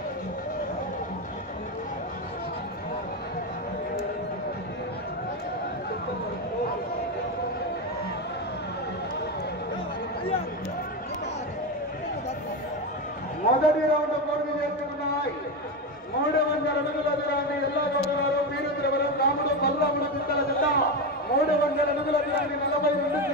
మొదటి రౌండ్ పూర్తి చేసుకున్నాయి. 300 అడుగుల దూరాన్ని ఎల్లాగౌడగారు వీరద్రవరం రాముడు బలరాముడు చింతల జిల్ల 300 అడుగుల దూరాన్ని 42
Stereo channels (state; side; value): normal; both; correlation 0.14